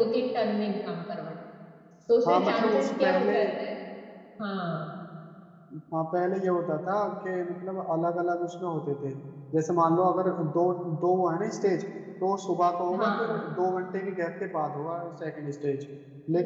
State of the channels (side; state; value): both; identical; correlation 1.00